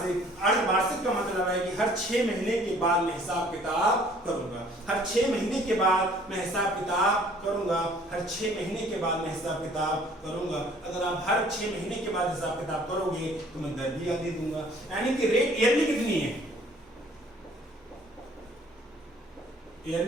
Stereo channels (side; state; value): both; normal; correlation 0.56